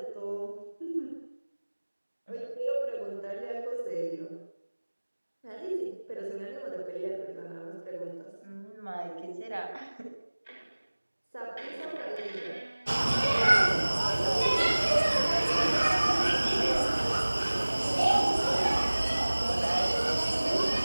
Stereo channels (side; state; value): both; inverted; correlation -1.00